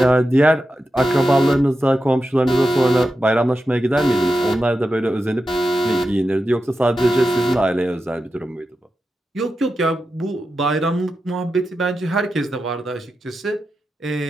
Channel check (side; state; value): both; normal; correlation 0.90